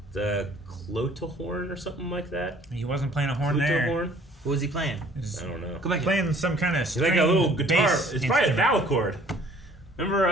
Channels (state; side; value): normal; both; correlation 0.55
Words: The Clotahorn or something like that. He wasn't playing a horn there. Flutahorn? What was he playing? He's I don't know. Go back. playing some kind of It's like a little guitar. It's probably a vowel. vowel